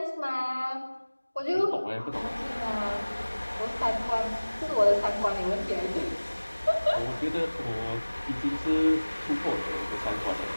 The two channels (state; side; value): inverted; both; correlation -1.00